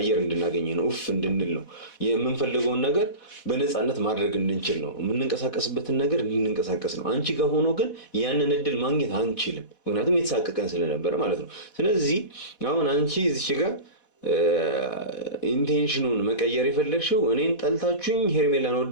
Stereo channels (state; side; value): late; right; 4.1 ms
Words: እንድናገኝ ነው፣ ኡፍ እንድንል ነው። የምንፈልገውን ነገር በነፃነት ማድረግ እንድንችል ነው፣ የምንንቀሳቀስበትን ነገር እንድንንቀሳቀስ ነው። አንቺ ጋር ሆኖ ግን ያንን እድል ማግኘት አንችልም፣ ምክንያቱም የተሳቀቀን ስለነበረ ማለት ነው። ስለዚህ አሁን አንቺ እዚች ጋር ኢንቴንሽኑን መቀየር የፈለግሽው እኔን ጠልታችሁኝ ሄርሜላን